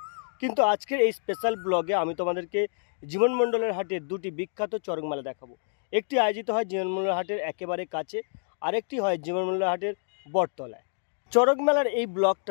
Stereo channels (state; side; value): silent; right; digital silence